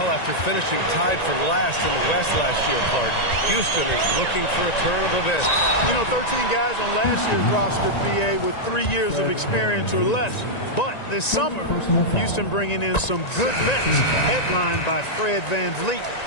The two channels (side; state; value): right; late; 1.9 ms